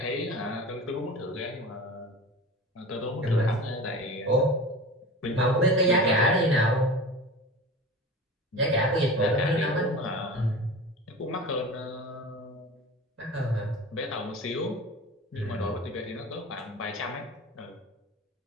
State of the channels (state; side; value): normal; both; correlation 0.34